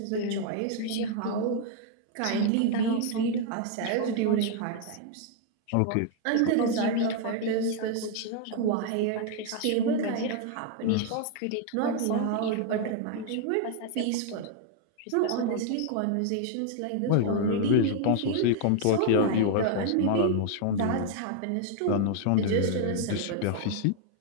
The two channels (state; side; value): different; both; correlation 0.00